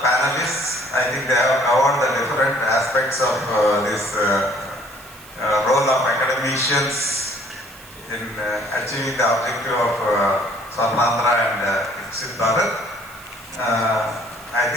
I think they have covered the different aspects of this role of academicians in achieving the objective of Swarna and Viksit Bharat. I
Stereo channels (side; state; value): right; noise; hiss, 21 dB below the sound